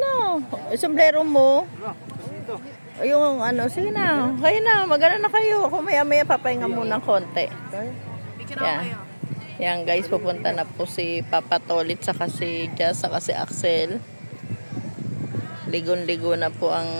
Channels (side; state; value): both; inverted; correlation -1.00